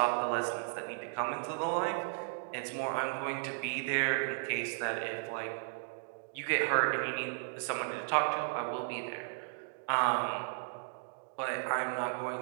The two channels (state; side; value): silent; left; digital silence